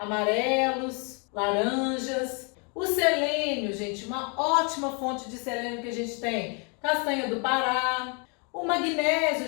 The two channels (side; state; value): right; quieter; 35.0 dB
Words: laranjas. O selênio, gente, uma ótima fonte de selênio que a gente tem. Castanha do Pará. O magnésio